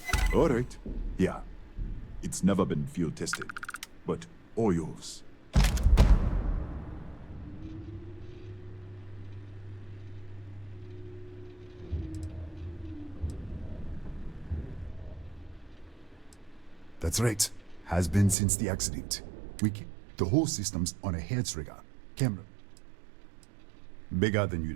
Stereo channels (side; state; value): left; drops out; at 18.4 s